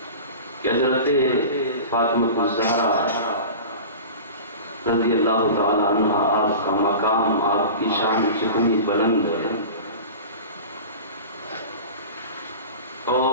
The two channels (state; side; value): inverted; both; correlation -0.34